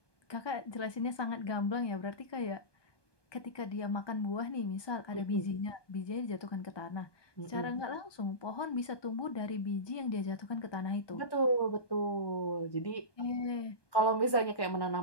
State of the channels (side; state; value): right; late; 1.2 ms